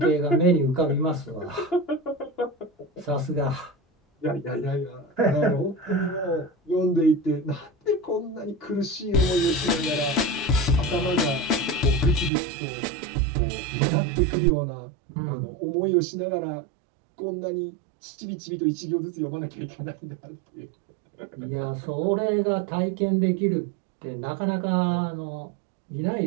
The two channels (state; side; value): drops out; left; at 12.3 s